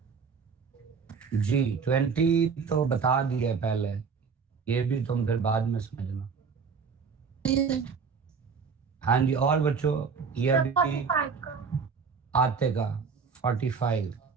जी 20 तो बता दिए पहले, ये भी तुम फिर बाद में समझना। हाँ जी, और बच्चों ये अभी 45 का। आते का 45।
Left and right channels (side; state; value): left; quieter; 5.6 dB